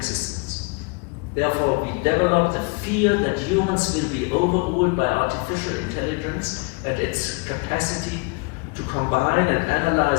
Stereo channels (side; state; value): right; quieter; 29.7 dB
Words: Therefore, we develop the fear that humans will be overruled by artificial intelligence and its capacity to combine and